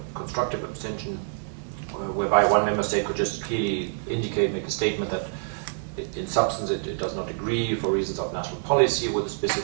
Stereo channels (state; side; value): silent; left; 61 dB below the other